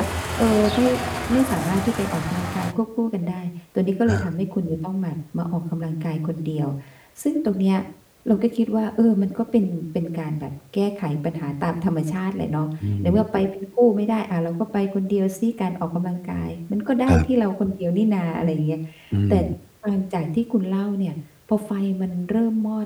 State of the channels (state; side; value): identical; both; correlation 1.00